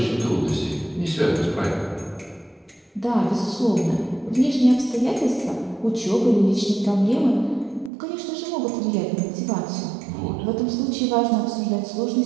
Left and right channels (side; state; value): left; drops out; at 7.9 s